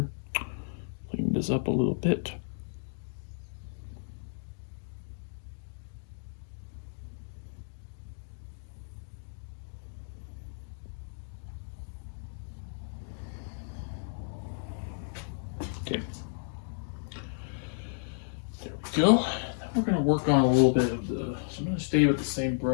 Clean this up a little bit. Okay. There we go. Now we're going to work on a little bit of the, so I'm going to stay with the same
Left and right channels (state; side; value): silent; right; digital silence